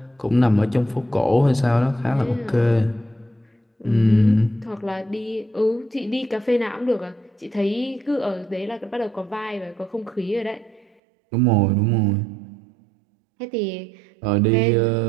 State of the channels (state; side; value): drops out; left; at 10.9 s